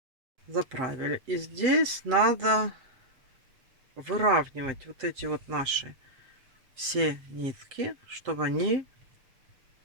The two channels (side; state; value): left; late; 7.6 ms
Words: Заправили. И здесь надо выравнивать вот эти вот наши все нитки, чтобы они